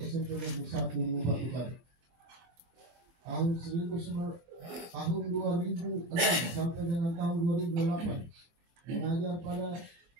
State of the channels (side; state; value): left; late; 24 ms